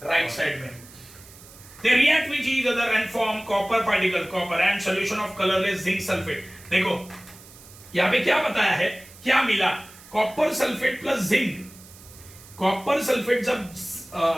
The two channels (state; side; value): noise; right; hiss, 21 dB below the sound